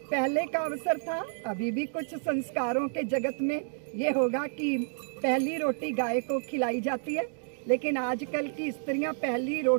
पहले का अवसर था, अभी भी कुछ संस्कारों के जगत में ये होगा कि पहली रोटी गाय को खिलाई जाती है, लेकिन आजकल की स्त्रियां पहली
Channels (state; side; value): silent; left; digital silence